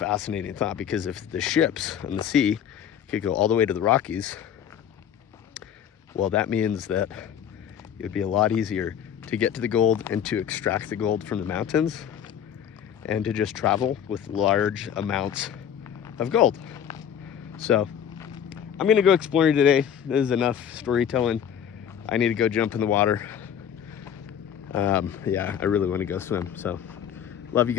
thought, because if the ships on the sea could go all the way to the Rockies, well, that means that it would be a lot easier to get to the gold and to extract the gold from the mountains and to just travel with large amounts of gold. So I'm gonna go exploring today. This is enough storytelling. I need to go jump in the water. Yeah, I really want to go swim. So love you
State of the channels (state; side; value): quieter; right; 8.9 dB